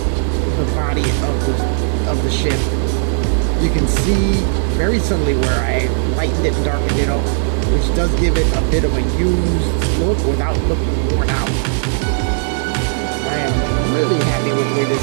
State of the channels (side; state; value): left; silent; 59 dB below the other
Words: the body of the ship. You can see very subtly where I lightened it and darkened it up, which does give it a bit of a used look without looking worn out. I am really happy with the way